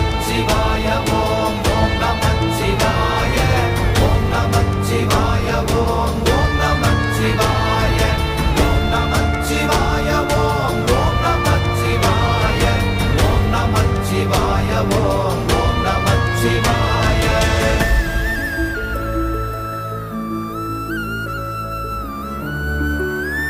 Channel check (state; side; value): identical; both; correlation 1.00